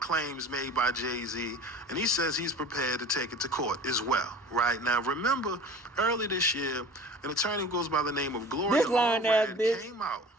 made by Jay-Z, and he says he's prepared to take it to court as well. Right now, remember early this year, an attorney who goes by the name of Gloria This lying ass bitch came out,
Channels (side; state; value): both; normal; correlation 0.40